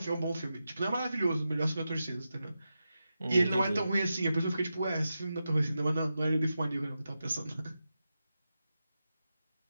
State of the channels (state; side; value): inverted; both; correlation -0.90